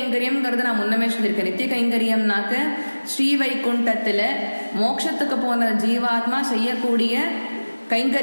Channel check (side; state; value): both; inverted; correlation -1.00